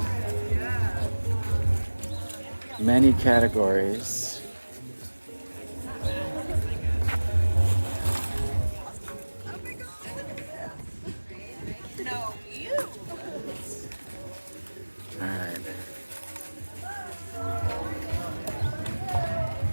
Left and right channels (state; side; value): inverted; both; correlation -1.00